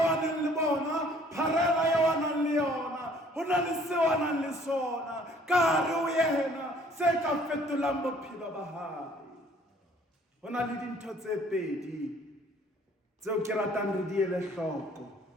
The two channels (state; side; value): normal; both; correlation 0.57